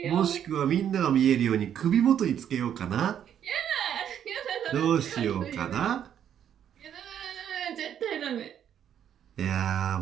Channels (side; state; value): left; quieter; 9.5 dB